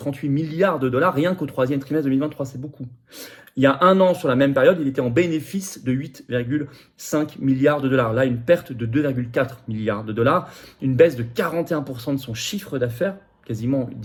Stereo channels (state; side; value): identical; both; correlation 1.00